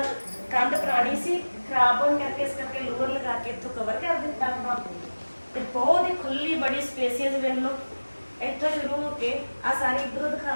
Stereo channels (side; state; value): both; inverted; correlation -1.00